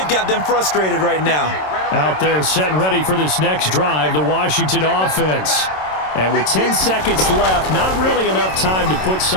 got them frustrated right now. Out there set and ready for this next drive, the Washington offense. And with 10 seconds left, not really enough time to put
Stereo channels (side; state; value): right; late; 27 ms